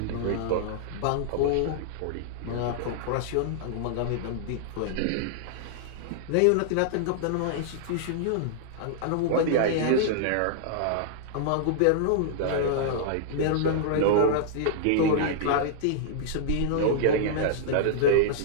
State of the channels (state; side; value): different; both; correlation -0.01